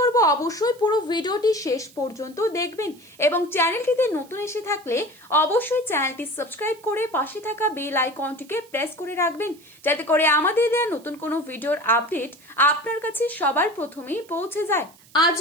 অবশ্যই পুরো ভিডিওটি শেষ পর্যন্ত দেখবেন এবং চ্যানেলটিতে নতুন এসে থাকলে অবশ্যই চ্যানেলটি সাবস্ক্রাইব করে পাশে থাকা বেল আইকনটিকে প্রেস করে রাখবেন, যাতে করে আমাদের দেওয়া নতুন কোনো ভিডিওর আপডেট আপনার কাছে সবার প্রথমেই পৌঁছে যায়। আজ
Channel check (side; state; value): right; noise; hiss, 26 dB below the sound